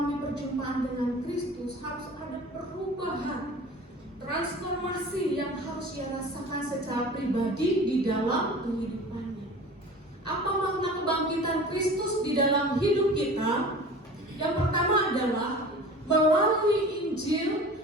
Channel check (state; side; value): normal; both; correlation 0.40